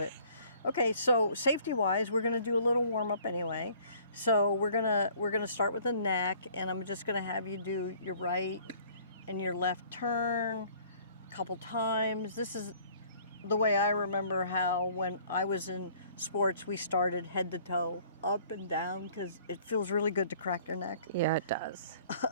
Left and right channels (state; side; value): inverted; both; correlation -0.55